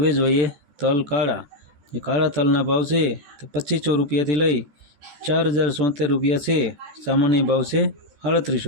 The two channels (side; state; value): left; late; 14 ms